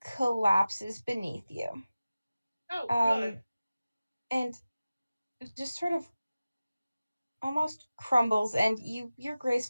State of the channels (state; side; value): inverted; both; correlation -0.96